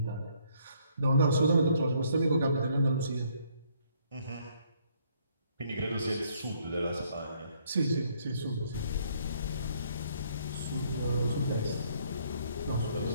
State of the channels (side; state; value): both; inverted; correlation -0.67